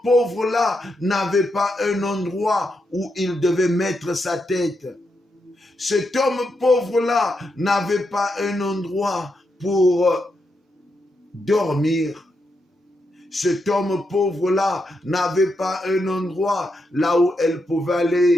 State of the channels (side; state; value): both; normal; correlation 0.83